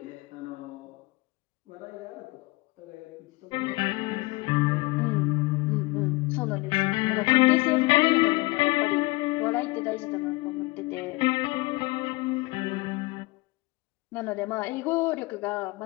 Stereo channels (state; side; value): quieter; right; 23.4 dB